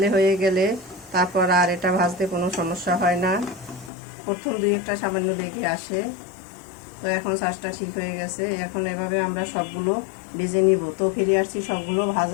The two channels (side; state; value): right; drops out; at 3.9 s